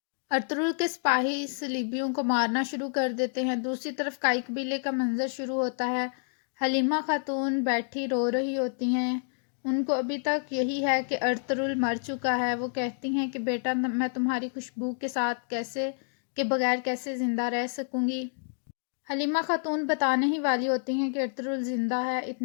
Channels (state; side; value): silent; right; 59 dB below the other